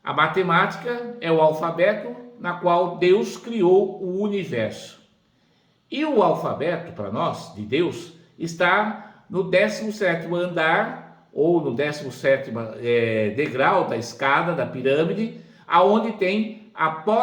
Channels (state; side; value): identical; both; correlation 1.00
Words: a matemática é o alfabeto na qual Deus criou o universo. E o alfabeto, para nós, de Deus, está no 17º andar, ou no 17º degrau da escada, da pirâmide, aonde tem a